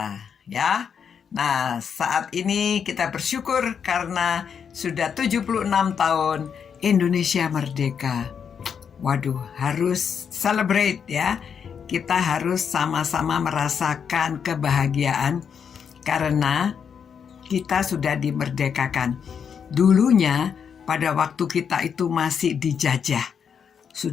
ya. Nah, saat ini kita bersyukur karena sudah 76 tahun Indonesia merdeka. Waduh, harus celebrate ya. Kita harus sama-sama merasakan kebahagiaan karena kita sudah dimerdekakan. Dulunya pada waktu kita itu masih dijajah.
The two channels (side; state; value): right; quieter; 7.1 dB